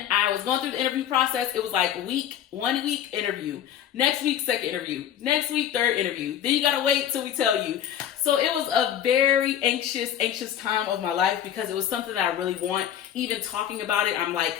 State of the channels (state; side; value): quieter; right; 10.1 dB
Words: I was going through the interview process. It was 1 week interview, next week second interview, next week third interview. Then you gotta wait till we tell you. So it was a very anxious time of my life because it was something that I really want. Even talking about it, I'm like,